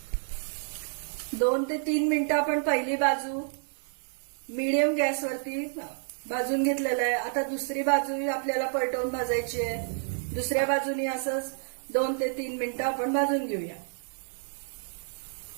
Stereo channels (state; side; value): silent; left; digital silence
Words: 2 ते 3 मिनिटं आपण पहिली बाजू मीडियम गॅसवरती भाजून घेतलेलं आहे। आता दुसरी बाजू आपल्याला पलटवून भाजायची आहे। दुसऱ्या बाजूनी असंच 2 ते 3 मिनिटं आपण भाजून घेऊया।